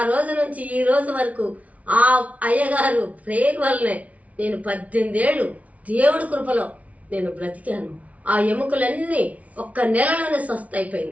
రోజు నుంచి ఈ రోజు వరకు ఆ అయ్యగారు ప్రేయర్ వల్లనే నేను 18 ఏళ్ళు దేవుడి కృపలో నేను బ్రతికాను. ఆ ఎముకలన్నీ ఒక్క నెలలోనే స్వస్థ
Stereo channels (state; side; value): late; left; 0.068 ms